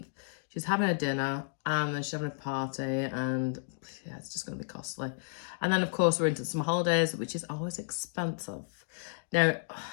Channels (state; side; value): silent; right; digital silence